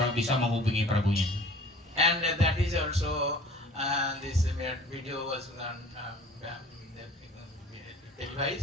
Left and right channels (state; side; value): normal; both; correlation 0.47